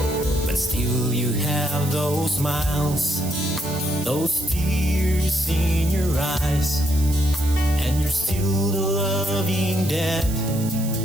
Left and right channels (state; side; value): noise; right; hiss, 11 dB below the sound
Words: but still you have those smiles, those tears in your eyes, and you're still the loving dad